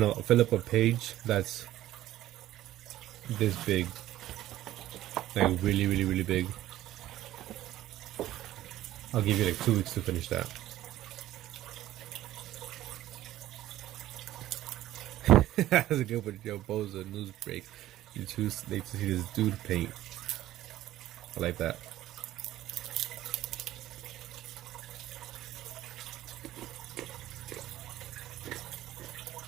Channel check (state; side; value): quieter; left; 14.2 dB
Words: know, fill up a page that's this big, like really, really, really big. I'll give you like 2 weeks to finish that. That's a good one, Joe Boza news break. You too late to see this dude paint. I like that.